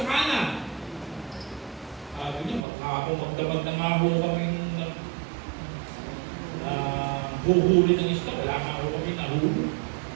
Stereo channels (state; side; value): drops out; left; at 2.6 s